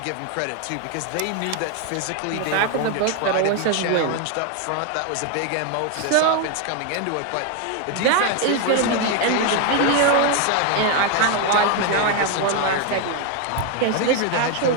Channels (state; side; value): different; both; correlation 0.01